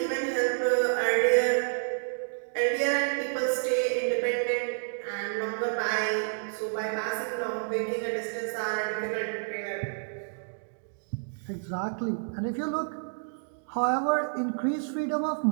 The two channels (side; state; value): left; silent; digital silence